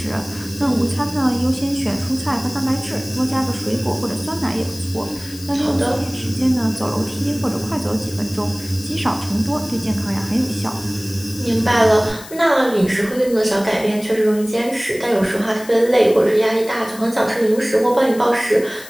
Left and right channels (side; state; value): left; noise; hiss, 16 dB below the sound